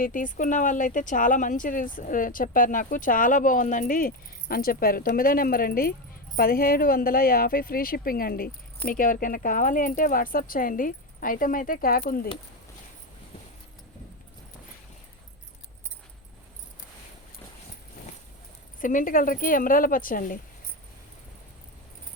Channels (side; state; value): both; normal; correlation 0.14